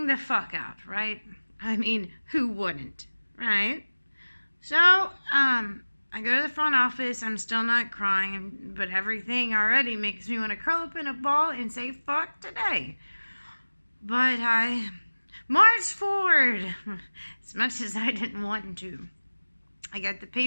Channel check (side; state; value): both; inverted; correlation -1.00